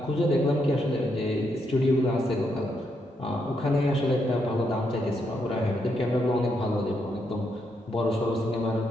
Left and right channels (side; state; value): both; normal; correlation 0.78